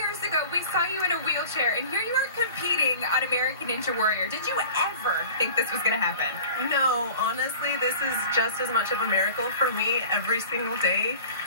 ago, we saw you in a wheelchair, and here you are competing on American Ninja Warrior. Did you ever think this was going to happen? No, honestly, this is just as much of a miracle for me every single day.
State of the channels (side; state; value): both; inverted; correlation -0.41